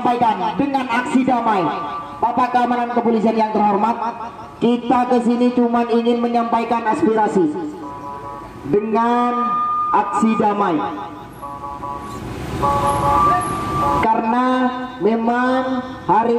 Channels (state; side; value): identical; both; correlation 1.00